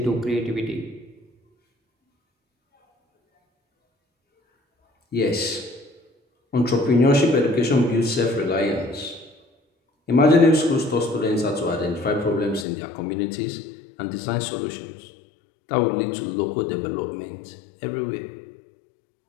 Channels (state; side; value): drops out; right; at 12.7 s